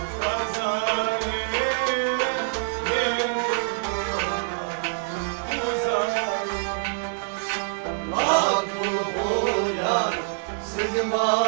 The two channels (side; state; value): left; silent; digital silence